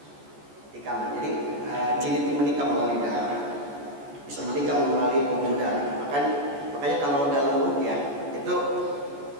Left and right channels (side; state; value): left; late; 14 ms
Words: Tikaman. Jadi jin itu menikam melalui darah, bisa menikam melalui pembuluh darah. Makanya kalau dalam ruqyah itu